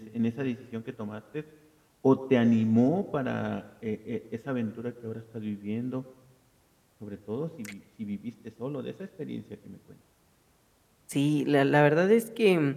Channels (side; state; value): both; identical; correlation 1.00